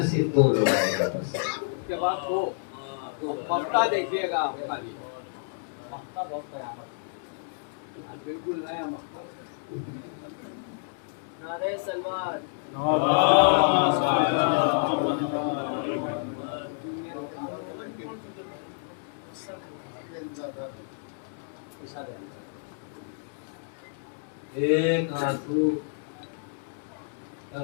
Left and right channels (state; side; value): silent; right; digital silence